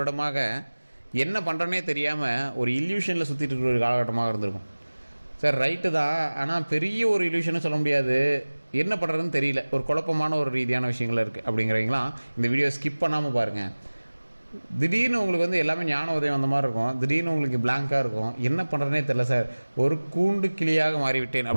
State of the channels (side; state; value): both; inverted; correlation -1.00